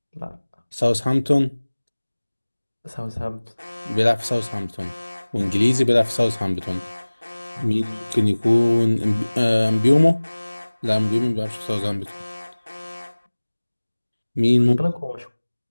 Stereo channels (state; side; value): inverted; both; correlation -1.00